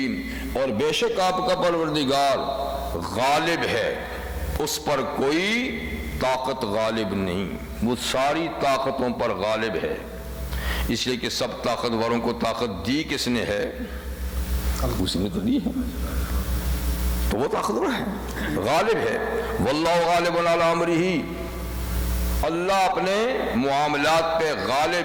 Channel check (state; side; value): identical; both; correlation 1.00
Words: اور بے شک آپ کا پروردگار غالب ہے، اس پر کوئی طاقت غالب نہیں، وہ ساری طاقتوں پر غالب ہے، اس لیے کہ سب طاقتوروں کو طاقت دی کس نے ہے؟ اسی نے تو دی ہے، تو وہ طاقتور ہے، غالب ہے۔ واللہ غالب علی امرہ، اللہ اپنے معاملات پہ